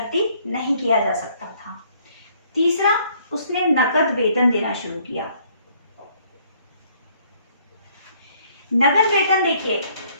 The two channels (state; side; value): inverted; both; correlation -0.63